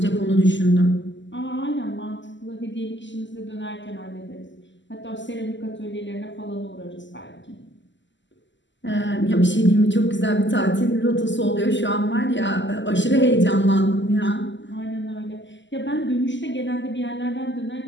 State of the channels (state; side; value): late; right; 0.54 ms